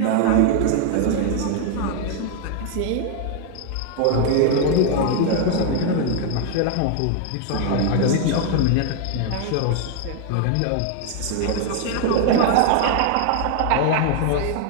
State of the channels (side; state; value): both; different; correlation 0.00